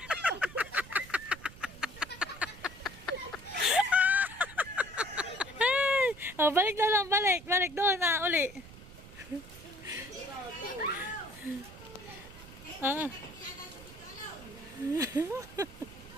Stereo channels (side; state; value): right; noise; rumble, 18 dB below the sound